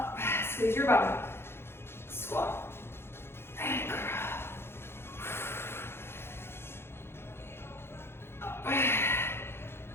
Squeeze your bum. Squat. And curl. Up.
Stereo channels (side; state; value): right; late; 0.12 ms